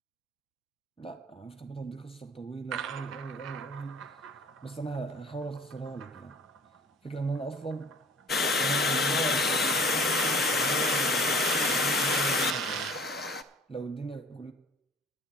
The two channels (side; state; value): both; normal; correlation 0.48